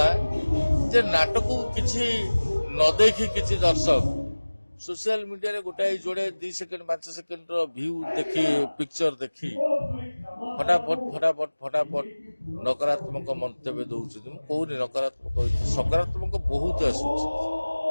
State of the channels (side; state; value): both; inverted; correlation -1.00